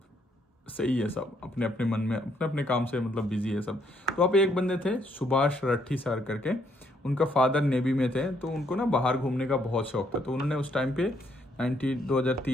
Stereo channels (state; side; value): normal; both; correlation 0.71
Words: सही है, सब अपने अपने मन में अपने अपने काम से मतलब बिजी है सब। तो वहाँ पे एक बंदे थे सुभाष रट्ठी सर करके, उनका फादर नेवी में थे, तो उनको ना बाहर घूमने का बहुत शौक था। तो उन्होंने उस टाइम पे